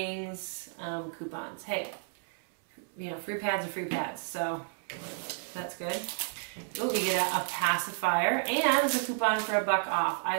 coupons. Hey, you know, free pads are free pads, so that's good. Oh, you get a pacifier, and there's a coupon for $1 off.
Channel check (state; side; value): silent; left; 57 dB below the other